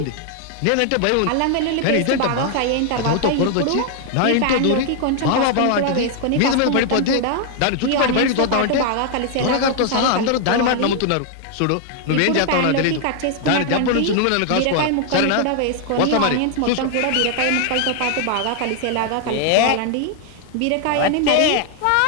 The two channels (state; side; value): different; both; correlation 0.00